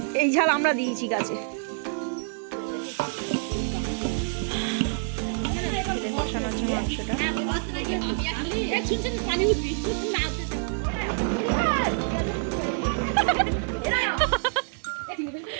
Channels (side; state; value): left; silent; digital silence